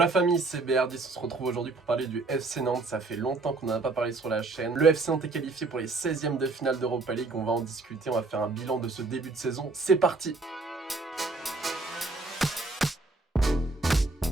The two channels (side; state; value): left; quieter; 3.5 dB